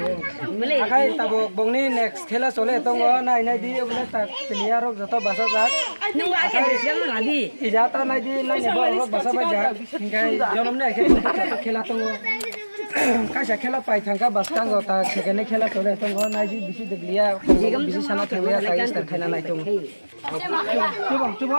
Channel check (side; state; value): both; inverted; correlation -1.00